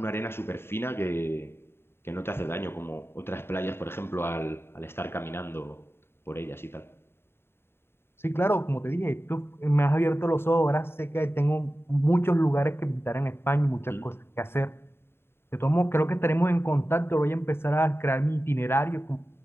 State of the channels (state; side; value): late; right; 0.11 ms